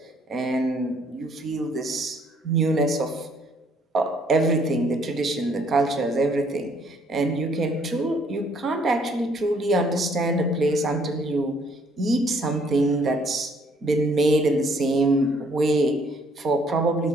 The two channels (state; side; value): normal; both; correlation 0.65